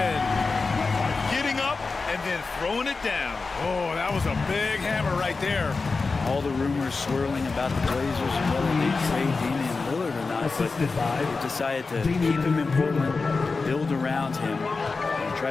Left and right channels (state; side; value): quieter; right; 4.2 dB